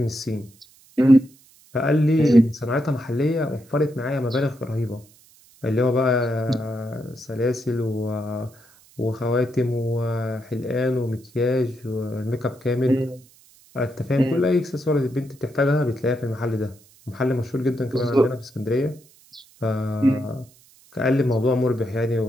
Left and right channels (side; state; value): right; noise; hiss, 28 dB below the sound